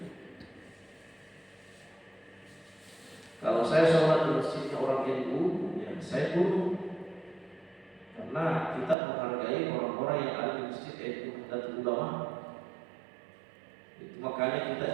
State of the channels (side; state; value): left; drops out; at 9.0 s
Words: Kalau saya sholat di masjidnya orang NU, ya saya tunduk, karena kita menghargai orang-orang yang ada di masjid NU dan ulama. Itu makanya